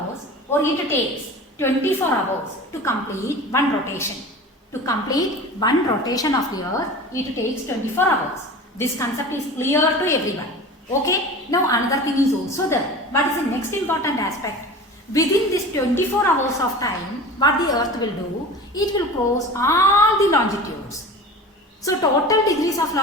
or it takes 24 hours to complete one rotation. To complete one rotation of the Earth, it takes 24 hours. This concept is clear to everyone. Okay? Now another thing is also there. What is the next important aspect? Within this 24 hours of time, what the Earth will do? It will cross all the longitudes. So total degrees of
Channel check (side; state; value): both; normal; correlation 0.36